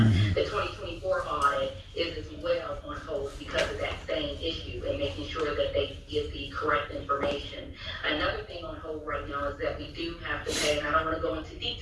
The 2024 audit is as well on hold because of that same issue and making sure that they get the correct information. Another thing on hold right now is that we do have to pay, and I don't want to go into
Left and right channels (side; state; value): both; identical; correlation 1.00